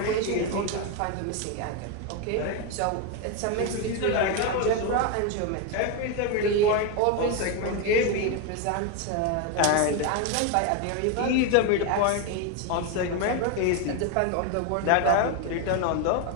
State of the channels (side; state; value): both; different; correlation 0.02